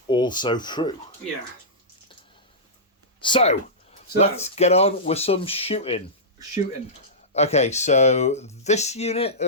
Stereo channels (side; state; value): both; normal; correlation -0.15